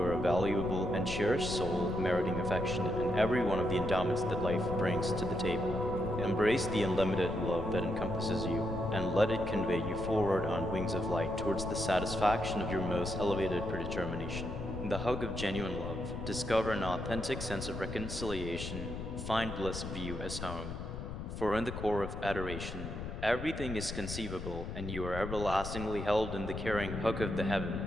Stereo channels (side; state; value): left; noise; rumble, 7 dB below the sound